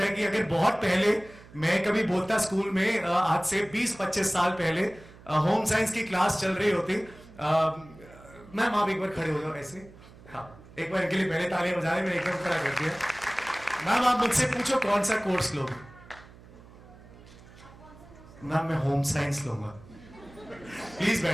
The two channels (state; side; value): noise; right; hum, 21 dB below the sound